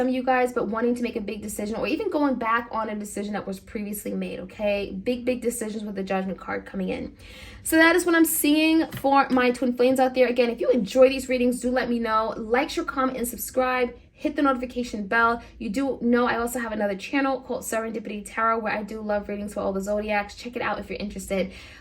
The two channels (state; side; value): identical; both; correlation 1.00